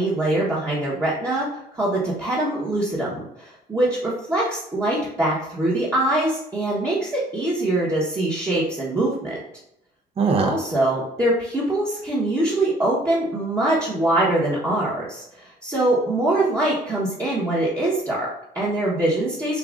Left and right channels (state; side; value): normal; both; correlation 0.59